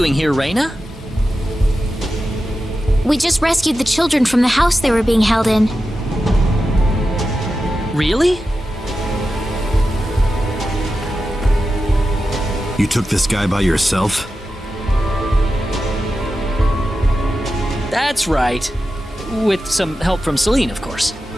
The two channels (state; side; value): normal; both; correlation 0.91